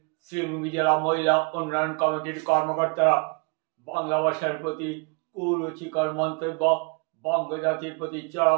শ্রীভূমি জেলা মহিলা উন্নয়ন কমিটির কর্মকর্তারা। বাংলা ভাষার প্রতি কুরুচিকর মন্তব্য, বঙ্গজাতির প্রতি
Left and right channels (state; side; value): quieter; left; 32.7 dB